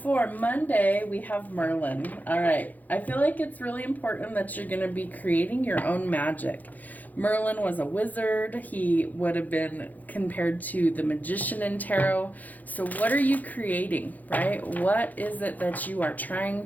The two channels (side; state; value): right; late; 0.081 ms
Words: Monday, we have Merlin. All right. I feel like it's really important that you're going to be creating your own magic. Merlin was a wizard. He would have been compared to the magician in tarot. So what are you creating, right? What is it that you are